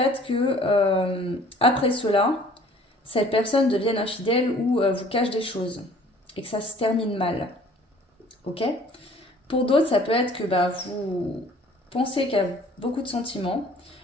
que après cela, cette personne devienne infidèle ou vous cache des choses et que ça se termine mal. Ok? Pour d'autres, ça peut être que vous pensez qu'il y a beaucoup de sentiments,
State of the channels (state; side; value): normal; both; correlation 0.53